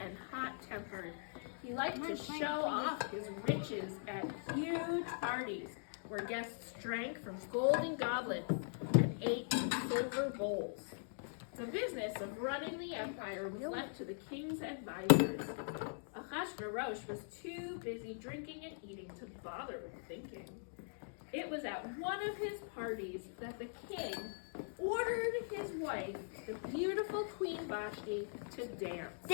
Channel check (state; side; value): silent; right; digital silence